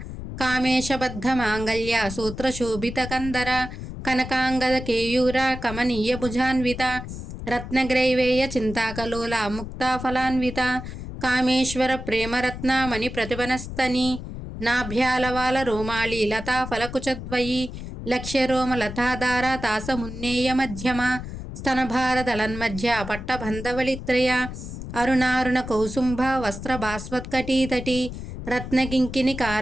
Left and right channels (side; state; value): left; noise; rumble, 9 dB below the sound